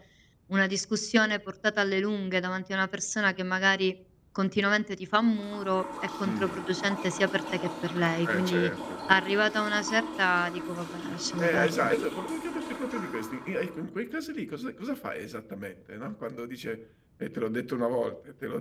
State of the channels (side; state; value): both; identical; correlation 1.00